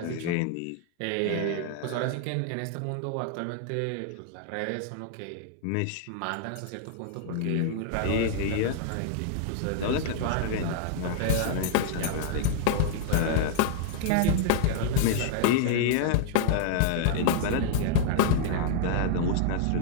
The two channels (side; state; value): both; different; correlation 0.00